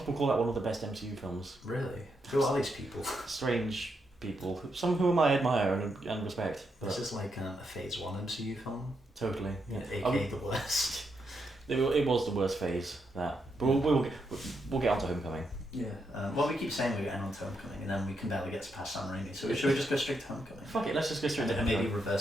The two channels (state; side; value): normal; both; correlation 0.81